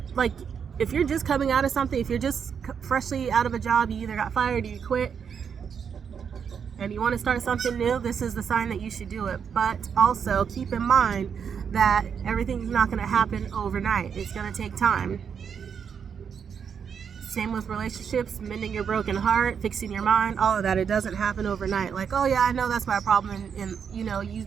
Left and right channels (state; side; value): quieter; left; 7.1 dB